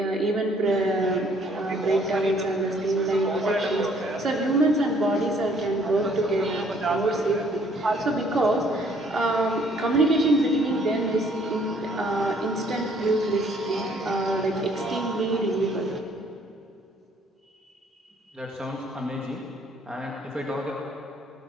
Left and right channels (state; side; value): normal; both; correlation 0.62